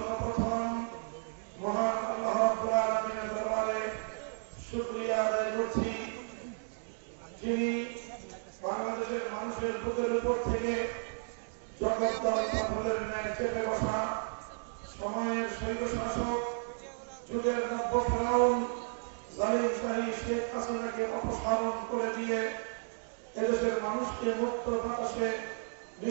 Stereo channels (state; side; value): silent; left; digital silence